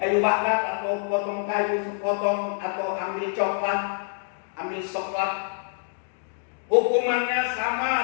bakar atau potong kayu sepotong, atau ambil coklat, ambil soklat, hukumannya sama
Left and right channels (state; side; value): silent; right; digital silence